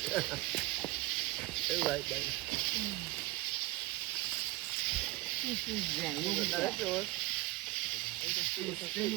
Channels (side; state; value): left; quieter; 19.7 dB